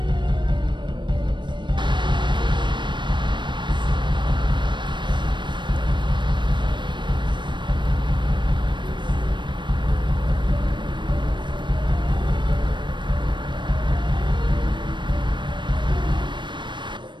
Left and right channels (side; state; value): left; late; 0.22 ms